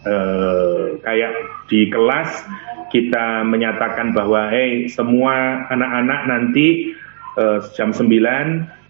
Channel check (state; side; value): silent; left; digital silence